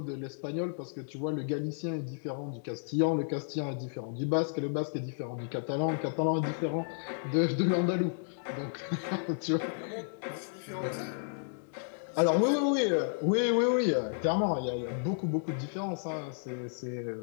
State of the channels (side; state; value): right; silent; digital silence